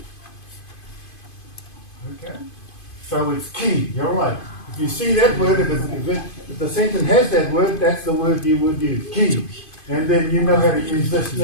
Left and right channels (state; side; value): late; right; 2.5 ms